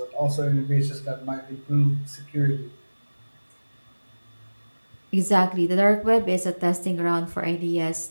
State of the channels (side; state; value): both; inverted; correlation -1.00